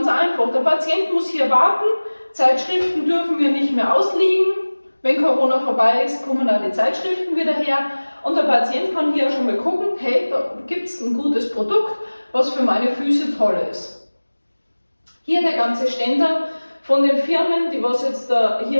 einfach, der Patient muss hier warten, Zeitschriften dürfen wir nicht mehr ausliegen. Wenn Corona vorbei ist, kommen auch die Zeitschriften wieder her und der Patient kann hier schon mal gucken, hey, da gibt es ein gutes Produkt, was für meine Füße toll ist. Hier der ganze Ständer von den Firmen, die was jetzt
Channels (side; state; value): both; inverted; correlation -1.00